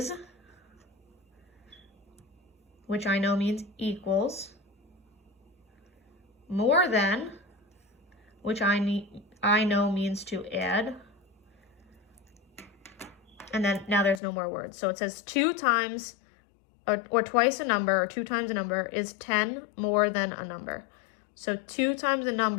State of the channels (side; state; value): right; drops out; at 14.2 s